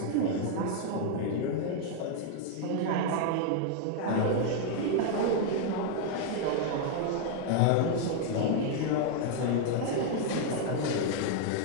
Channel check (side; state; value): both; different; correlation 0.00